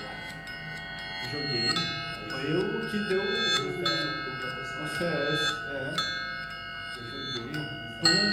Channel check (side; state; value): both; identical; correlation 1.00